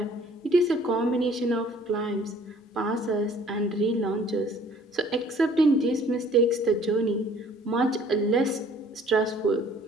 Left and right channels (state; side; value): normal; both; correlation 0.55